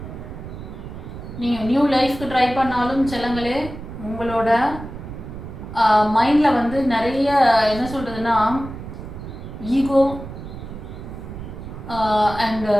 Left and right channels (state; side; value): noise; right; rumble, 11 dB below the sound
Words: நீங்கள் நியூ லைஃப்க்கு ட்ரை பண்ணாலும் செல்லங்களே, உங்களோட மைண்டில் வந்து நிறைய என்ன சொல்கிறதுனா ஈகோ அண்ட்